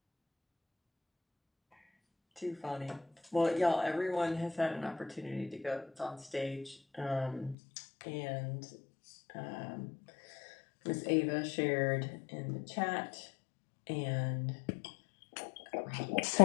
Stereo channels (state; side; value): drops out; right; at 7.6 s